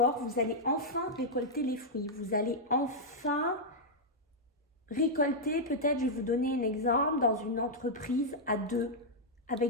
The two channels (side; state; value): both; normal; correlation -0.05